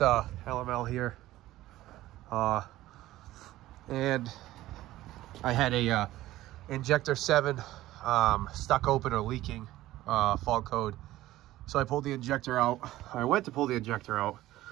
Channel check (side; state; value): left; quieter; 15.8 dB